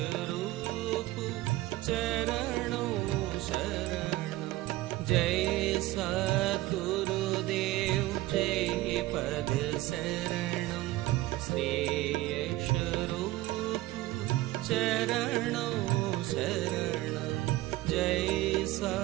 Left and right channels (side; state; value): left; quieter; 17.5 dB